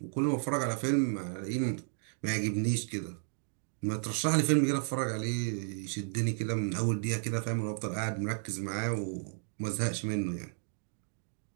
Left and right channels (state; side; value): silent; left; 56 dB below the other